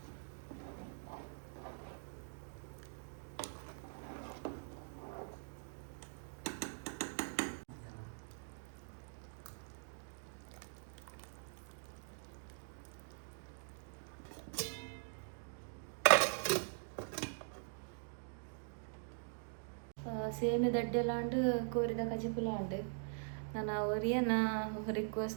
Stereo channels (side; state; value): left; silent; digital silence